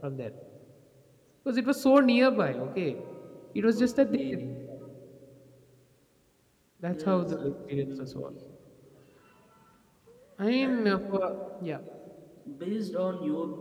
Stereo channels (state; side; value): identical; both; correlation 1.00